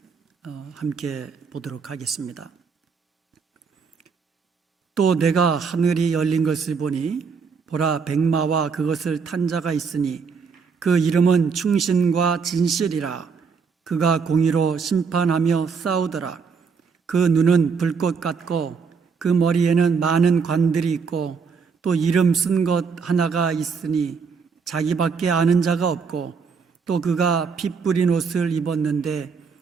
함께 보도록 하겠습니다. 또 내가 하늘이 열린 것을 보니 보라 백마와 그것을 탄 자가 있으니 그 이름은 충신과 진실이라. 그가 공의로 심판하며 싸우더라. 그 눈은 불꽃 같고 그 머리에는 많은 관들이 있고 또 이름 쓴 것 하나가 있으니 자기밖에 아는 자가 없고 또 그가 피 뿌린 옷을 입었는데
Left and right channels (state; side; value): quieter; left; 5.6 dB